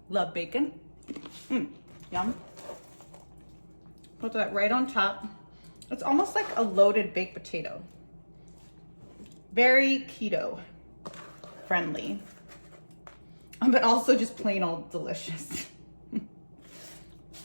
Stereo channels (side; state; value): both; inverted; correlation -1.00